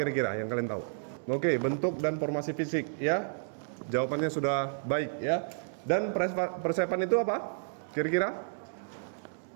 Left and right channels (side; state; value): left; silent; digital silence